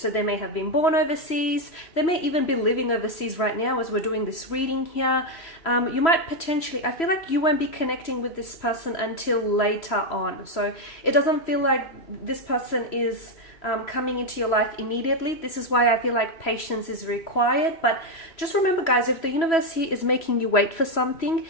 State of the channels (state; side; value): late; right; 3.0 ms